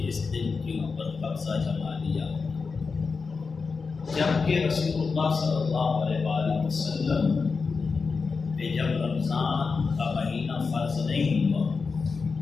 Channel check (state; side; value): quieter; right; 4.8 dB